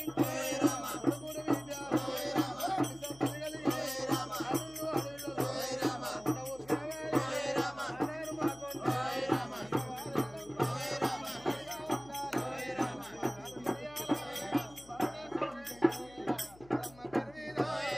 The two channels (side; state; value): left; noise; hum, 22 dB below the sound